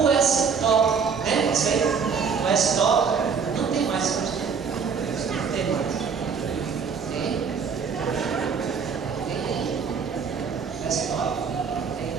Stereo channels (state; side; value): quieter; left; 6.1 dB